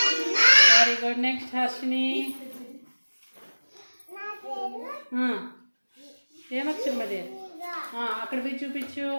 Very good. నెక్స్ట్ హర్షిని. ఏమక్షరం అది? అక్కడ పోయి చూపించు.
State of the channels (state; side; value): inverted; both; correlation -1.00